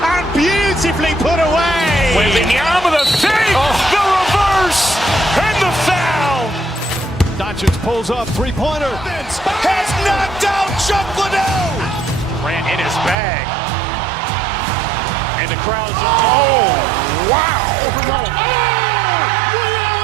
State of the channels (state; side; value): drops out; left; at 13.2 s